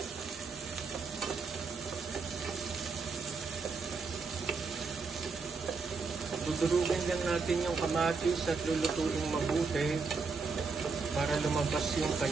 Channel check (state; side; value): quieter; left; 4.6 dB